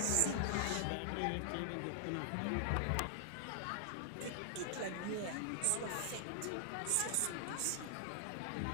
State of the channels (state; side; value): different; both; correlation 0.00